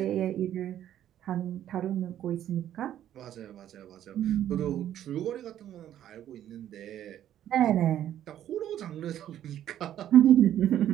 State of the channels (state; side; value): quieter; left; 11.3 dB